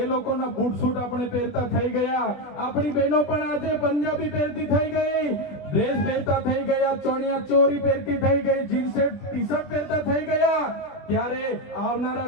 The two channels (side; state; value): right; late; 21 ms